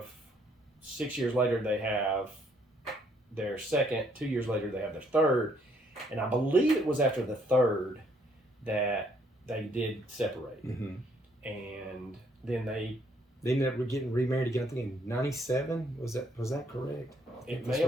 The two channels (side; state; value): both; normal; correlation 0.68